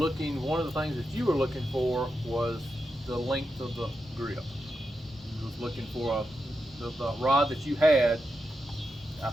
one of the things that you were looking for was the length of the grip. You was looking for the rod that you had. I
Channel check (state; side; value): normal; both; correlation 0.87